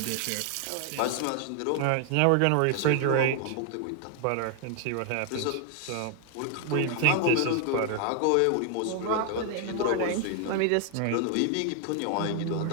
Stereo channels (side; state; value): both; different; correlation 0.00